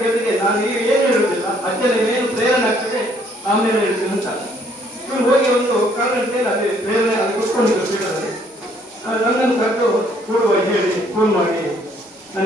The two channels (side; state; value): both; normal; correlation 0.64